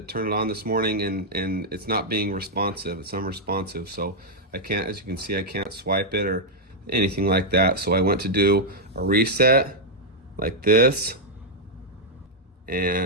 turn it on this morning and it's not being responsive. It's unresponsive. So I can't, as you can see, I can't swipe it or anything like that. So I went to do a reset like this.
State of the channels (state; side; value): normal; both; correlation -0.04